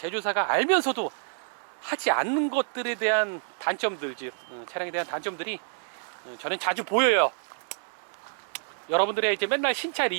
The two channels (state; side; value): silent; left; digital silence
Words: 알면서도 하지 않는 것들에 대한 단점들, 즉 차량에 대한 단점들이 저는 자주 보여요. 여러분들의 이제 맨날 신차